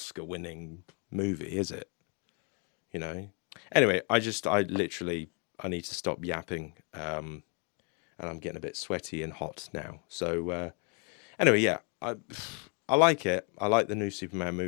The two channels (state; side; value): quieter; right; 37.1 dB